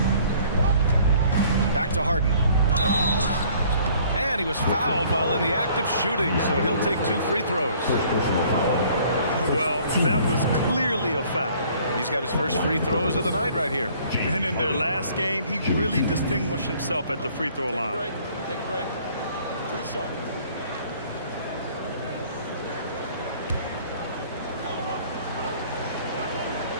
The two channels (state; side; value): inverted; both; correlation -0.57